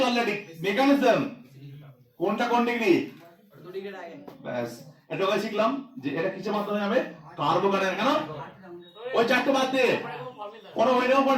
অলরেডি মেকানিজম, কোনটা কোন ডিগ্রি, 2 ডিগ্রি আগে ব্যাস এটাকে শিখলাম যে এটা কিসের মাধ্যমে হবে? কার্বোকার্বন। কেন ওই চারটে বাদ দে, কোনো ওইটার উপর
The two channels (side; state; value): both; identical; correlation 1.00